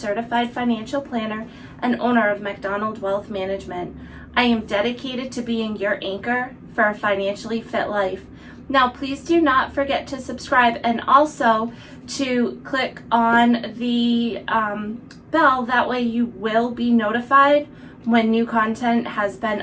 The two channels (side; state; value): both; identical; correlation 1.00